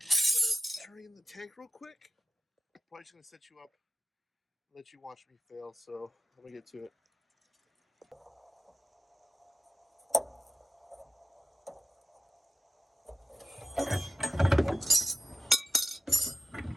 turn in the tank real quick. Probably just gonna set you up, let you watch me fail. So let me get to it.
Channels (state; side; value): normal; both; correlation 0.90